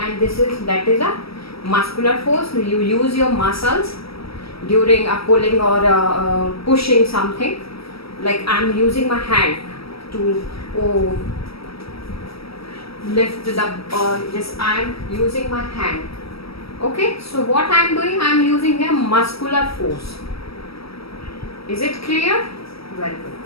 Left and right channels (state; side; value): late; right; 0.76 ms